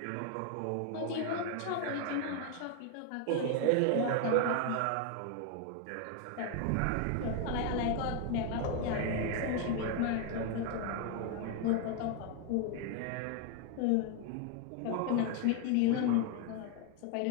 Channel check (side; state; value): both; different; correlation 0.01